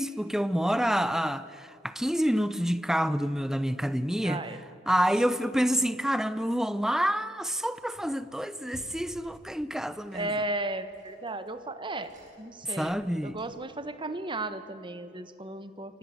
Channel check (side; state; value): both; normal; correlation 0.85